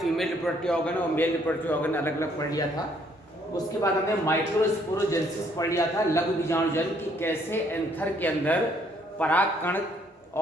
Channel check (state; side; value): normal; both; correlation 0.66